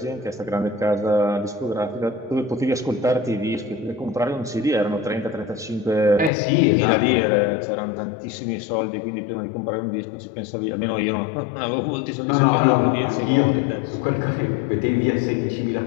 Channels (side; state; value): right; drops out; at 6.3 s